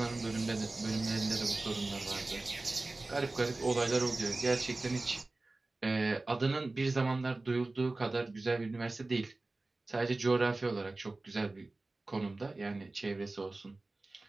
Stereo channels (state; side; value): quieter; left; 3.1 dB